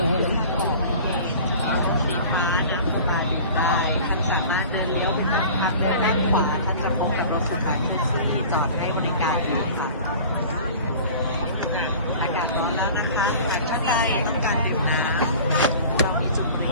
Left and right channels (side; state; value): both; inverted; correlation -0.42